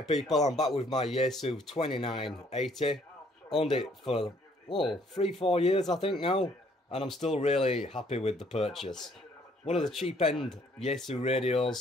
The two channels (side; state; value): both; normal; correlation 0.63